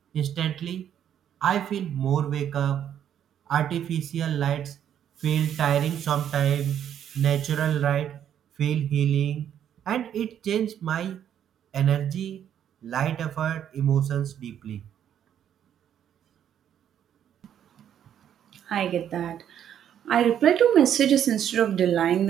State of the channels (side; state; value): left; quieter; 9.7 dB